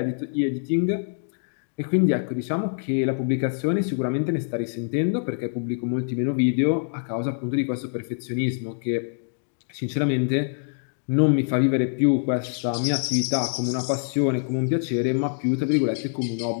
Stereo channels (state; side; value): silent; right; digital silence